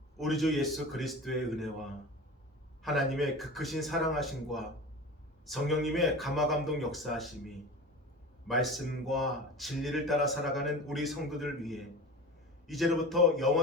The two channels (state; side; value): normal; both; correlation 0.34